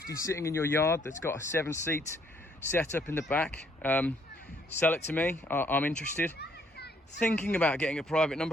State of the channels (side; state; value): both; normal; correlation 0.67